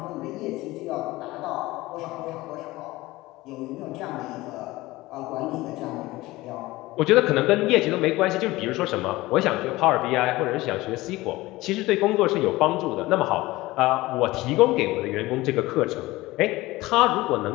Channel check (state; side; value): quieter; right; 19.2 dB